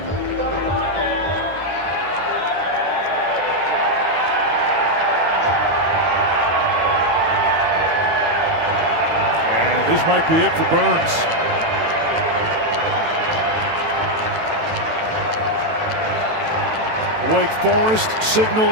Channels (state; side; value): late; left; 18 ms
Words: And this might be it for Burns. Wake Forest